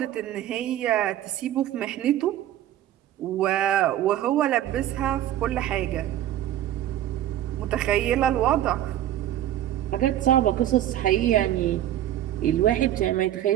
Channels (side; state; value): left; quieter; 12.4 dB